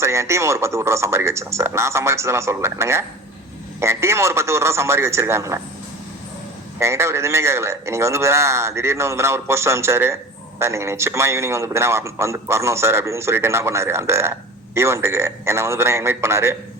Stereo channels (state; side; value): normal; both; correlation 0.36